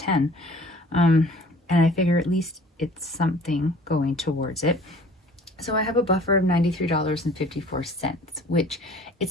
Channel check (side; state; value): both; normal; correlation 0.50